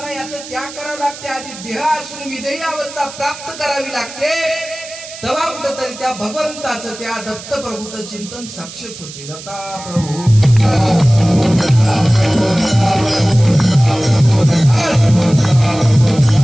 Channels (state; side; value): noise; right; hiss, 14 dB below the sound